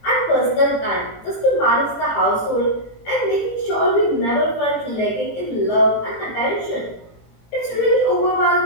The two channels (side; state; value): right; late; 18 ms